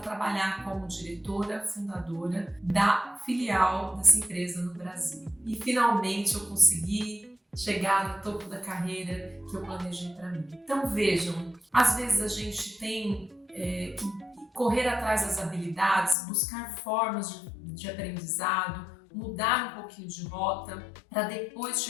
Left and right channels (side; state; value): right; drops out; at 16.2 s